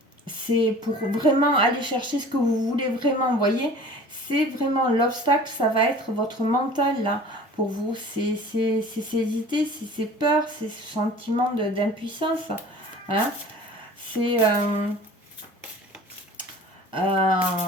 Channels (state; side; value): normal; both; correlation 0.44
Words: C'est pour vraiment aller chercher ce que vous voulez vraiment, vous voyez. C'est vraiment l'obstacle, ça va être votre mental, là. Pour vous, c'est ces idées, c'est ces peurs, ces sentiments d'impuissance. Hein. C'est